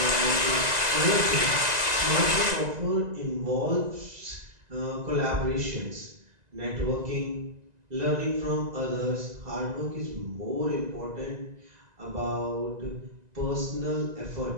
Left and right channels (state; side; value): late; left; 2.0 ms